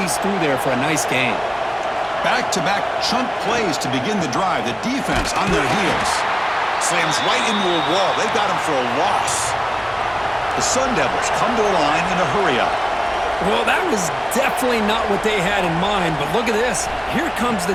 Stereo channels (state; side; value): identical; both; correlation 1.00